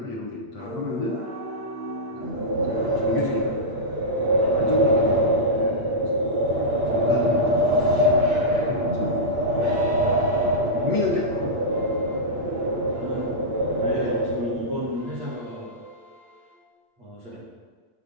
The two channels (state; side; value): late; left; 8.6 ms